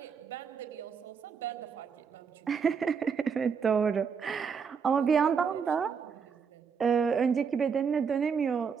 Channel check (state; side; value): quieter; left; 6.3 dB